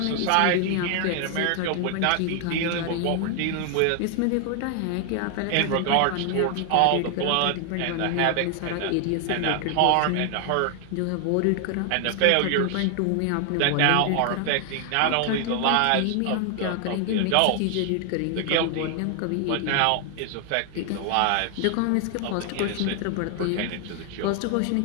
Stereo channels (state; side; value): different; both; correlation 0.00